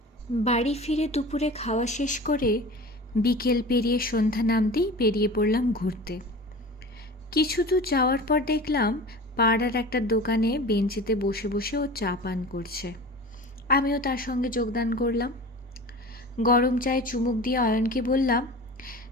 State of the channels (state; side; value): normal; both; correlation 0.36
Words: বাড়ি ফিরে দুপুরে খাওয়া শেষ করে বিকেল পেরিয়ে সন্ধ্যা নামতেই বেরিয়ে পড়লাম ঘুরতে। কিছু দূর যাওয়ার পর দেখলাম পাড়ার একটা দোকানে বেঞ্চিতে বসে বসে ও চা পান করছে। আমিও তার সঙ্গে যোগদান করলাম। গরম চায়ে চুমুক দিয়ে অয়নকে বললাম,